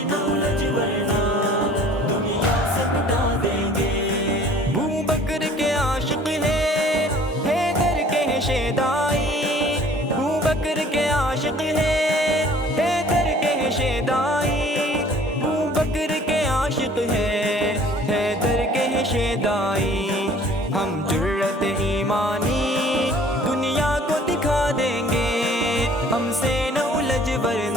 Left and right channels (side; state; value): both; normal; correlation 0.52